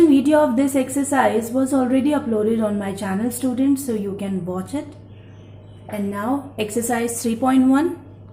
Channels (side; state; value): both; identical; correlation 1.00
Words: video of this exercise was already uploaded on my channel, students, so you can watch it. And now exercise 3.1,